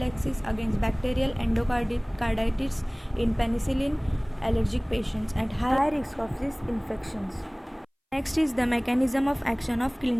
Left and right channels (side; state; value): both; identical; correlation 1.00